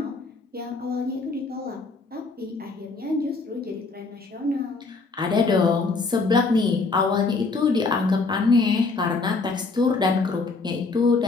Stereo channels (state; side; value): quieter; right; 3.9 dB